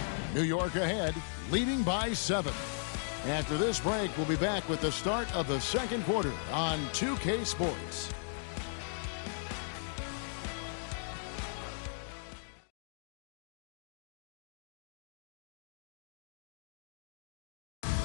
New York ahead, leading by 7. After this break, we'll be back with the start of the second quarter on 2K Sports.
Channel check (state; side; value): silent; right; digital silence